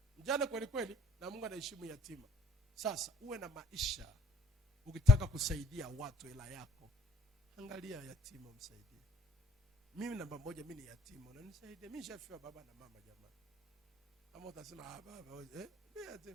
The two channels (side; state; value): both; normal; correlation 0.57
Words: kweli kweli, na Mungu anaheshimu yatima. Sasa uwe na maisha, ukitaka kusaidia watu hela yako, angalia yatima msaidie. Mimi namba moja, mimi ni yatima, unanisaidie? Mimi nishafiwa baba na mama jamani. Ama utasema baba mimi